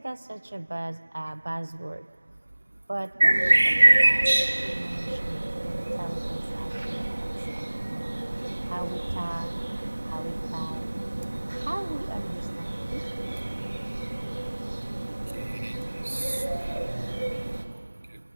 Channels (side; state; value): both; inverted; correlation -1.00